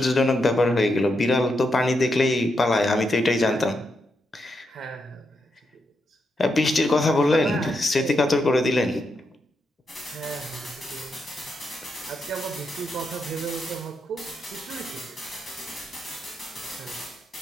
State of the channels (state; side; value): normal; both; correlation 0.83